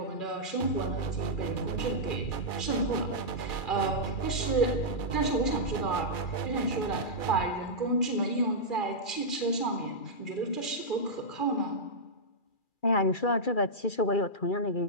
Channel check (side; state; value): right; late; 2.4 ms